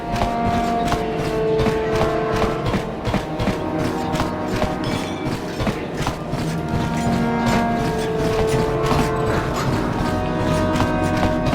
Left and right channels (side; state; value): both; identical; correlation 1.00